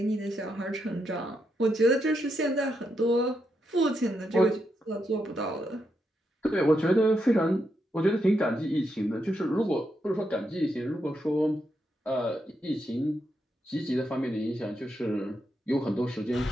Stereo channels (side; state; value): both; normal; correlation 0.82